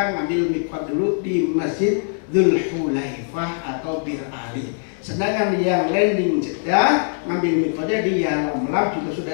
ngambil mikot dulu di Masjid Dzul Hulaifah atau Bir Ali. Sedangkan yang landing Jeddah ngambil mikotnya di Yalamlam juga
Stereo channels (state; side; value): silent; right; digital silence